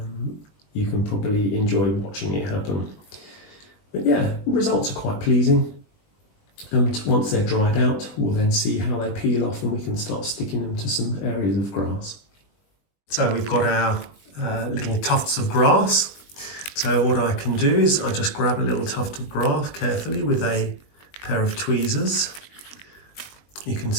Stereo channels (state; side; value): late; right; 20 ms